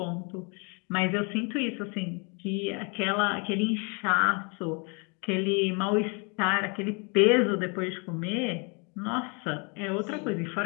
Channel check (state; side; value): quieter; right; 33.7 dB